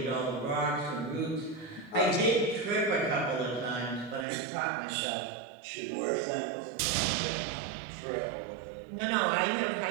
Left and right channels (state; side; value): drops out; left; at 4.2 s